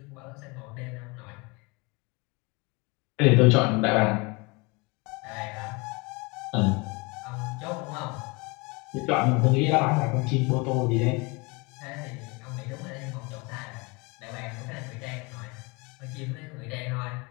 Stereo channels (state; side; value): quieter; right; 27.5 dB